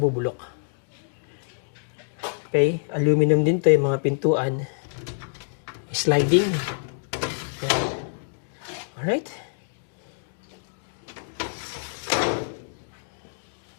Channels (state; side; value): silent; right; digital silence